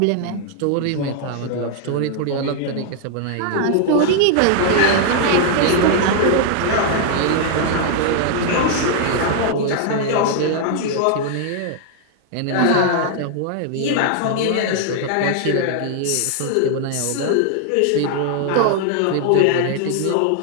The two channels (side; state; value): both; different; correlation 0.00